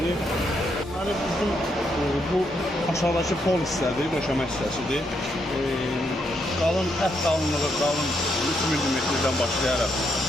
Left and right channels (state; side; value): normal; both; correlation 0.77